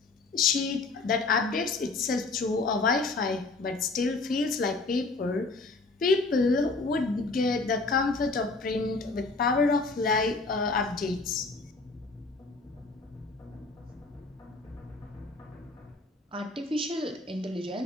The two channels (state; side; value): quieter; right; 3.5 dB